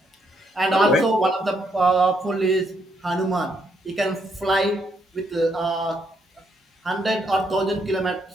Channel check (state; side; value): normal; both; correlation 0.74